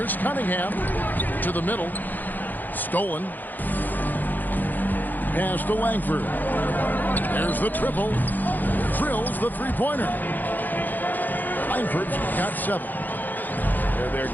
Cunningham to the middle. Stolen. Pass to Langford. There's the triple. Drills the three-pointer. Langford's got 7. They're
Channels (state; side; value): late; right; 0.086 ms